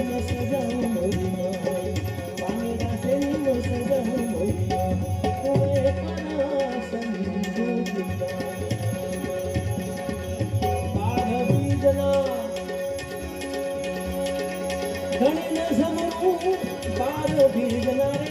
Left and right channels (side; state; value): both; identical; correlation 1.00